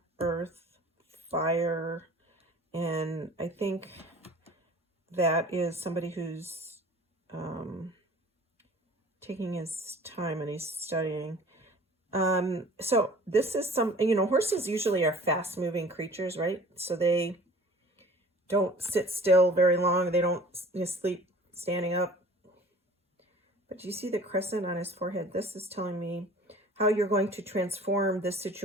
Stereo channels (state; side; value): normal; both; correlation 0.46